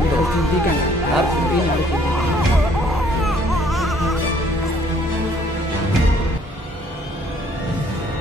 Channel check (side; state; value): both; normal; correlation 0.61